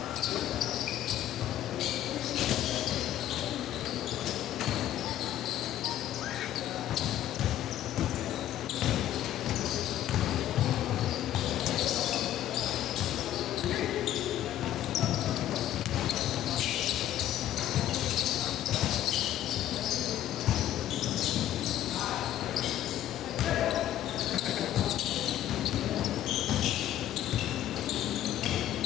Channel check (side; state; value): right; quieter; 12.3 dB